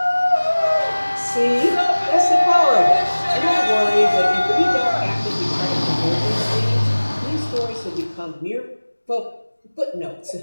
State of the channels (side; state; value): both; inverted; correlation -1.00